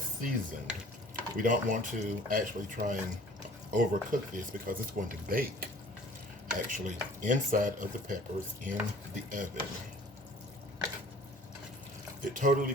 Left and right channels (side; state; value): both; normal; correlation 0.50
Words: We don't want to actually try and overcook this because it's going to bake actually inside of the peppers in the oven. It totally